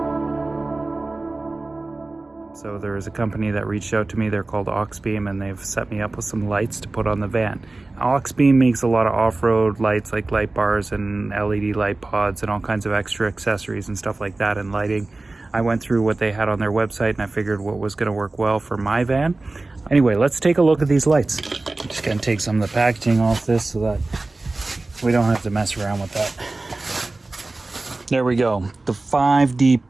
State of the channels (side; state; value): left; quieter; 3.2 dB